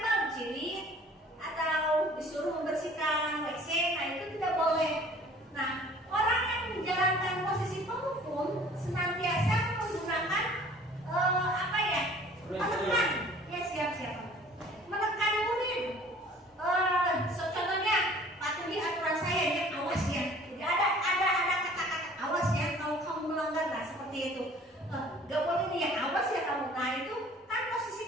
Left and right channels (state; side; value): normal; both; correlation 0.51